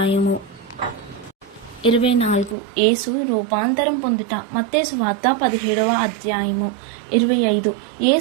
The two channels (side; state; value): left; drops out; at 2.6 s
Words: 24. యేసు రూపాంతరం పొందుట. మత్తయి సువార్త 17వ అధ్యాయము. 25.